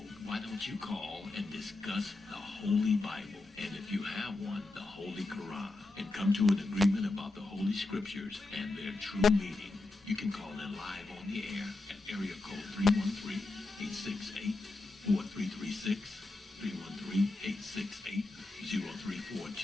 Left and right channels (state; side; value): quieter; right; 3.1 dB